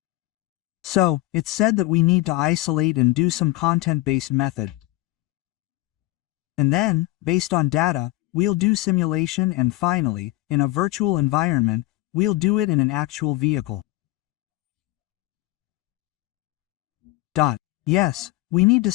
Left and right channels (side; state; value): right; quieter; 18.2 dB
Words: So, it's said that we need to isolate and do some content-based method. And then, based on data, we'll do simulation and finally, in a virtual environment, we'll do it in an actual vehicle. Yes, we need to